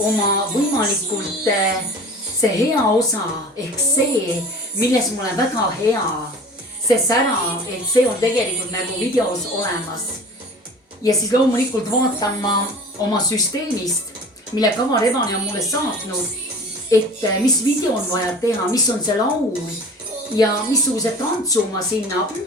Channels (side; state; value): both; normal; correlation 0.42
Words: oma võimalikult see hea osa ehk see, milles mul on väga hea, see sära, et see on tegelikult nagu videos olemas. Ja siis loomulikult vaatan ma oma süsteemist, mille Kava Rebane on mulle saatnud, et mis video on vaja teha, mis on see laul ja missuguse tantsu ma sinna